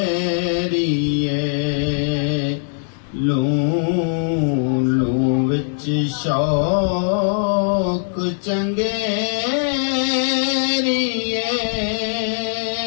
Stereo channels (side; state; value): right; silent; 66 dB below the other